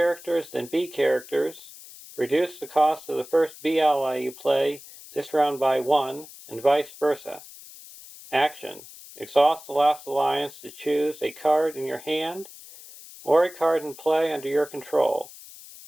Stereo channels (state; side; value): noise; left; hiss, 18 dB below the sound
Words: than B characters, reduce the cost of the first B ally you play this round by 1, and vice versa. Action. Exhaust the last alliance to choose a card in your hand or a card in play under your control.